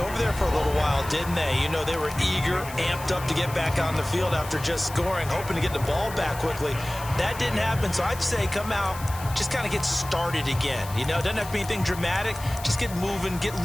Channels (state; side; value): noise; left; hiss, 14 dB below the sound